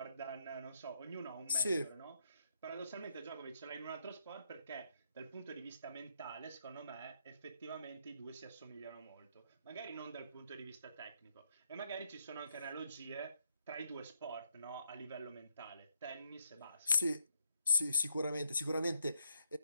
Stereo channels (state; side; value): inverted; both; correlation -0.75